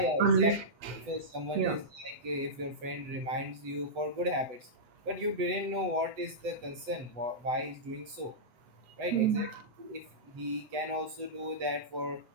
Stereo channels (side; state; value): left; late; 8.0 ms